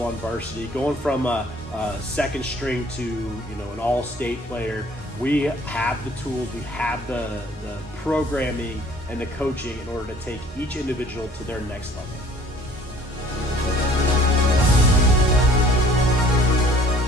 on varsity, going from a second string to an all-state player, we have the tools, we have the programming and the coaching in order to take each individual to their next level.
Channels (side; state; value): both; normal; correlation 0.54